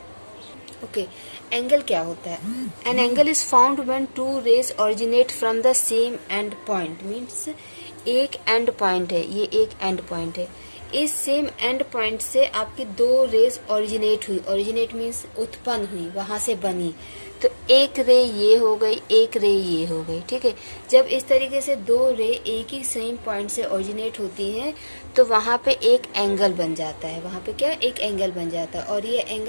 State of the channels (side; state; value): both; inverted; correlation -1.00